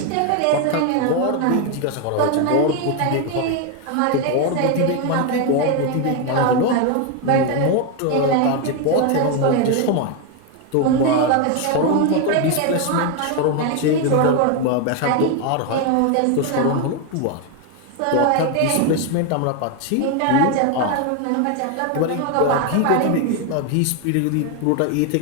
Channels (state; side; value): different; both; correlation 0.01